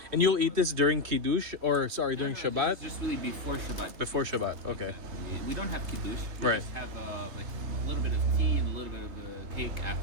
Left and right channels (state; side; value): late; left; 3.3 ms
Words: And you'll eat this during Kiddush, during Shabbat? Just really before Shabbat. Before Shabbat, okay. Exactly. we don't have kiddush. We Right. just have like a little bit of tea and a little bit of cake